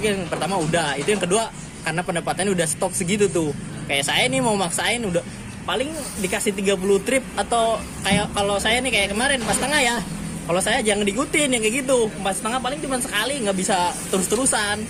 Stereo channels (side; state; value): both; identical; correlation 1.00